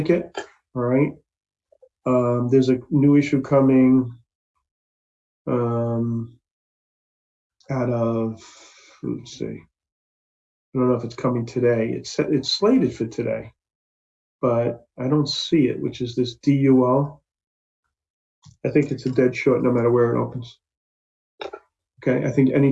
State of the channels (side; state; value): both; identical; correlation 1.00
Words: All right. There's a new issue coming out of, let's see. I don't know if it's coming today. It's slated for today, but I don't see it, which is this DUL. I think it's a dead short no matter where it opens. Okay, I think any